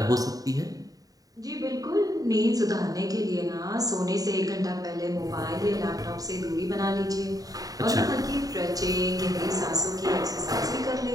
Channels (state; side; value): late; left; 0.18 ms